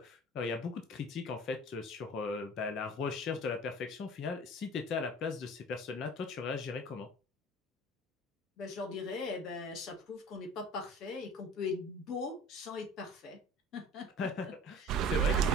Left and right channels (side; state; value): both; normal; correlation 0.42